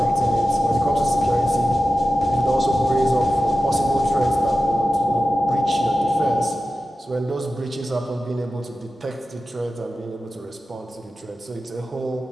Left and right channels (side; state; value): both; normal; correlation 0.93